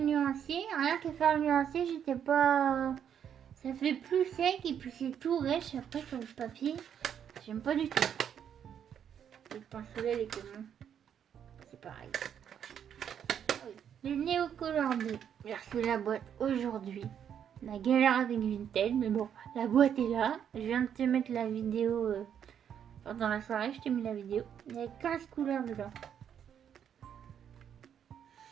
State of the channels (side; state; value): left; quieter; 8.7 dB